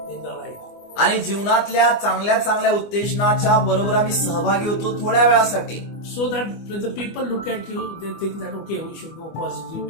in the life. आणि जीवनातल्या चांगल्या चांगल्या उत्तेजनाच्या बरोबर आम्ही सहभागी होतो थोड्या वेळासाठी. So that when the people look at you, they think that okay, we should go positive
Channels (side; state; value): right; late; 25 ms